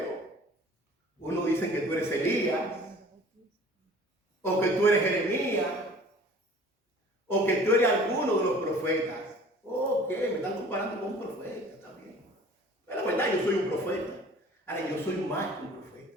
uno dice que tú eres Elías, o que tú eres Jeremías, o que tú eres alguno de los profetas. Ok, me están comparando con un profeta, está bien. Pero la verdad, yo soy un profeta. Ahora, yo soy más que un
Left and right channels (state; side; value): normal; both; correlation 0.48